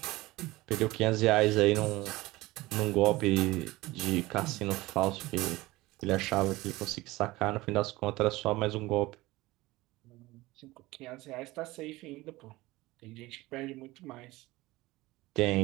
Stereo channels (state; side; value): quieter; left; 19.6 dB